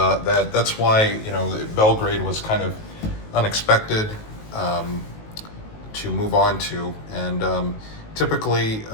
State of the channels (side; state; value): right; late; 19 ms